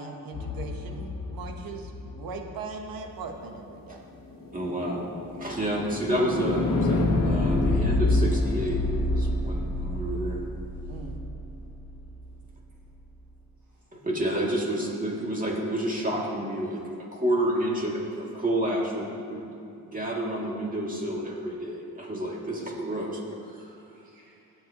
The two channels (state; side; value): normal; both; correlation 0.54